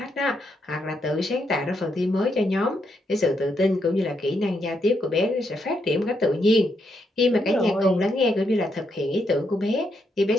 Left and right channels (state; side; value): normal; both; correlation 0.79